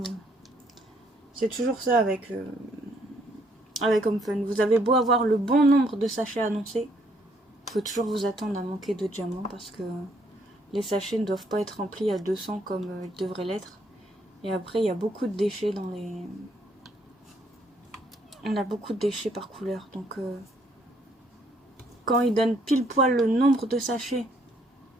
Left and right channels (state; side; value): normal; both; correlation 0.68